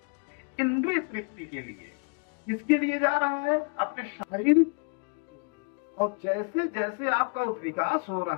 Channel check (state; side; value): quieter; right; 39.1 dB